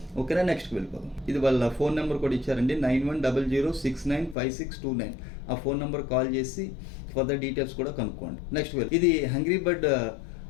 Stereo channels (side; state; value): right; drops out; at 4.4 s